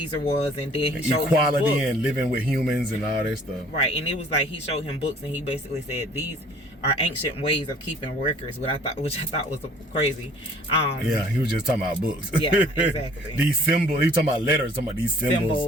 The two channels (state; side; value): normal; both; correlation 0.54